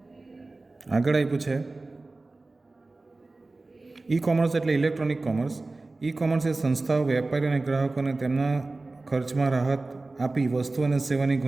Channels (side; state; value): left; quieter; 3.3 dB